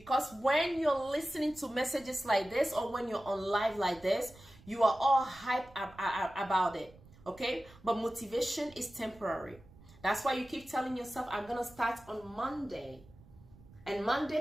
when you're listening to messages like this, or when you're on live like this, you are all hyped about it, okay? But motivation is temporary. That's why you keep telling yourself, I'm going to start on Monday. And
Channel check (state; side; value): noise; right; rumble, 23 dB below the sound